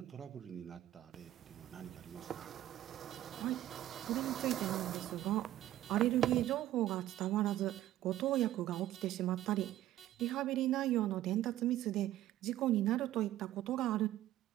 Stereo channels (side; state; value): left; quieter; 13.7 dB